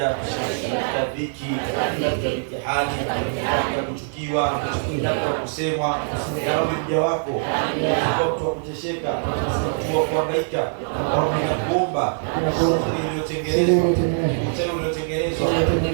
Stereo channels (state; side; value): silent; left; 63 dB below the other